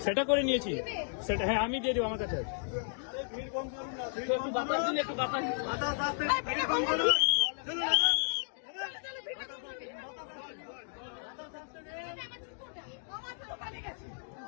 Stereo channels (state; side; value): silent; right; digital silence